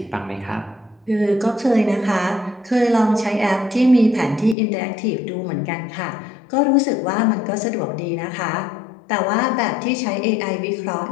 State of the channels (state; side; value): drops out; right; at 4.5 s